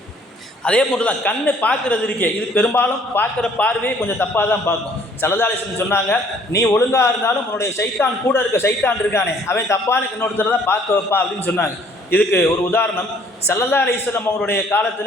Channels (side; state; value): both; normal; correlation 0.59